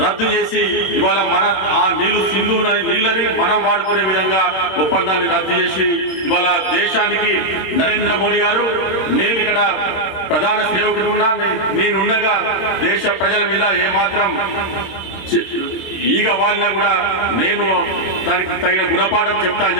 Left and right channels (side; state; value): right; late; 26 ms